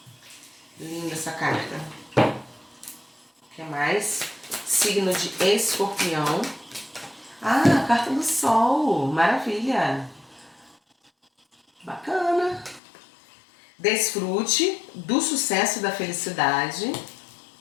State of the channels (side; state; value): right; drops out; at 12.8 s